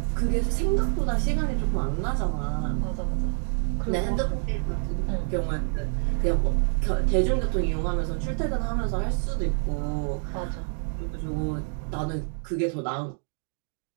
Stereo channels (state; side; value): silent; left; 55 dB below the other